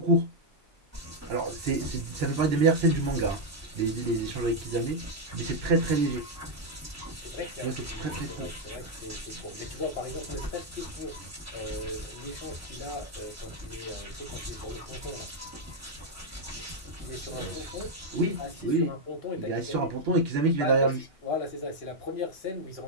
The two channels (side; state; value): both; normal; correlation 0.00